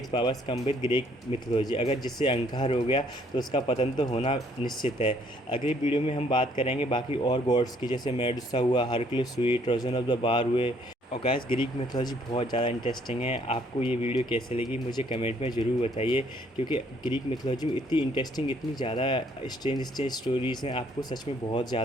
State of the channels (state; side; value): normal; both; correlation 0.65